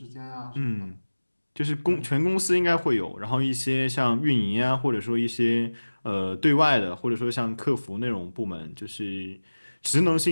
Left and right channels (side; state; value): both; inverted; correlation -1.00